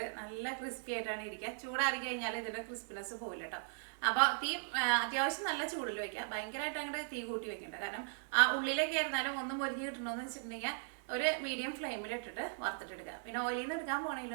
നല്ല ക്രിസ്പി ആയിട്ടാണ് ഇരിക്കുക. ചൂടാറി കഴിഞ്ഞാൽ ഇതിൻ്റെ ക്രിസ്പിനെസ് പോയില്ല കേട്ടോ. അപ്പോൾ തീ അത്യാവശ്യം നല്ല ചൂടിൽ വയ്ക്കുക. ഭയങ്കരമായിട്ട് അങ്ങോട്ട് തീ കൂട്ടി വെക്കണ്ട. കാരണം ആ ഉള്ളിലേക്ക് ആയിരുന്നാലും ഒന്നും പൊരിഞ്ഞ് കിട്ടണമെന്ന് വെച്ചിട്ടുണ്ടെങ്കിൽ ഒരു മീഡിയം ഫ്ലെയിമിൽ ഇട്ടിട്ട് വറുത്തിട്ടെടുക്കുക. പിന്നെ ഓയിലിൽ നിന്ന് എടുക്കാൻ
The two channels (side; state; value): left; silent; 52 dB below the other